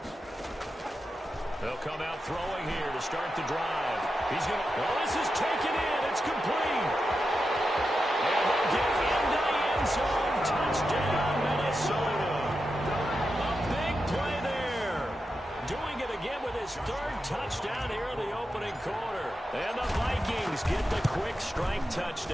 They'll come out throwing here to start the drive. He's going to... Well, this is taken in. It's complete. And they'll get into the end zone. Touchdown, Minnesota. A big play there. Doing it again with his 3rd touchdown here in the opening quarter. And the Vikings get the quick strike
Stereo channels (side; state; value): both; normal; correlation 0.89